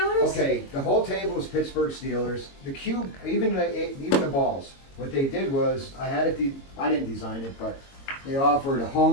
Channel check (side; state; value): right; late; 22 ms